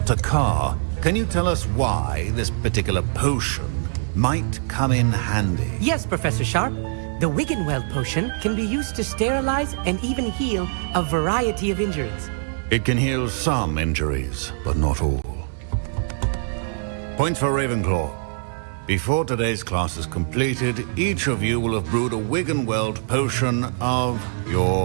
Takar, can you tell us why this particular potion might come in handy? Yes, Professor Sharp. The Wiggenweld potion can be used to sterilize and even heal a variety of injuries. It can heal some injuries, but not all. Points for Ravenclaw. Before today's class is completed, each of you will have brewed a Wiggenweld potion of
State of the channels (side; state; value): left; silent; digital silence